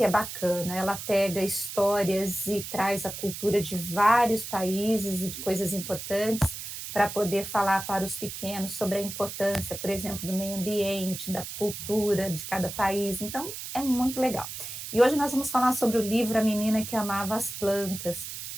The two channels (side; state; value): right; noise; hiss, 8 dB below the sound